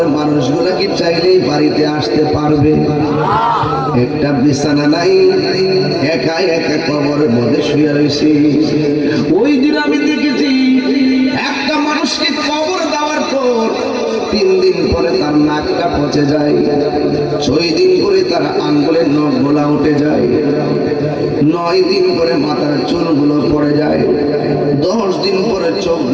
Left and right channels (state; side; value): identical; both; correlation 1.00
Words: মানুষগুলা কি চাইলেই বাড়িতে আসতে পারবে? একটা বিছানা নাই, একা একা কবরের মধ্যে শুয়ে রয়েছে। ওই দিন আমি দেখেছি একটা মানুষকে কবর দেওয়ার পর 3 দিন পরে তার নাকটা পচে যায়, 6 দিন পরে তার আঙ্গুলের নখগুলা উঠে যায়, 9 দিন পরে মাথার চুলগুলো পড়ে যায়, 10 দিন পরে চোখ